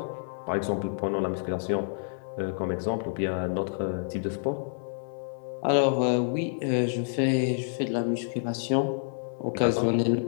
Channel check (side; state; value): right; silent; 59 dB below the other